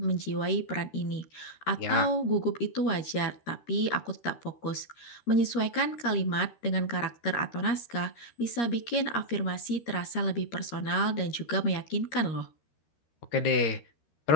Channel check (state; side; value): late; right; 13 ms